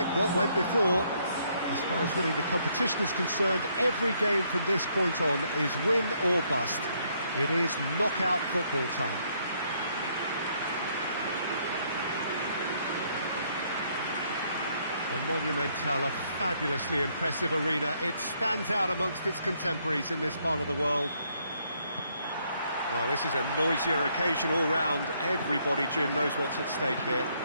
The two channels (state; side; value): inverted; both; correlation -0.70